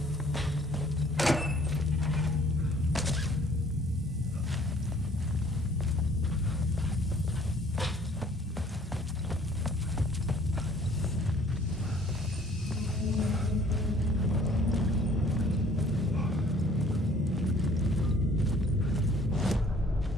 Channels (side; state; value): both; normal; correlation 0.56